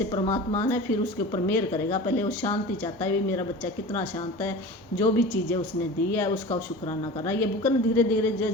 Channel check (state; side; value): normal; both; correlation 0.34